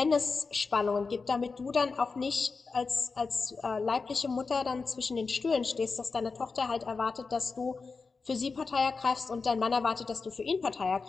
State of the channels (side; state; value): right; quieter; 4.5 dB